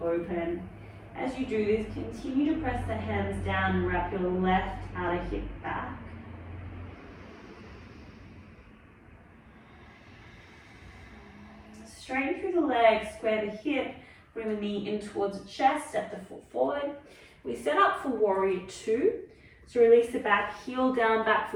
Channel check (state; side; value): identical; both; correlation 1.00